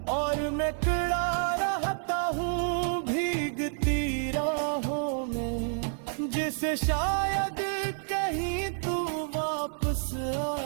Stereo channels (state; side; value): silent; left; 58 dB below the other